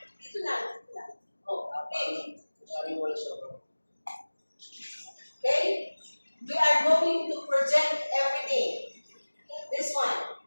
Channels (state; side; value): inverted; both; correlation -1.00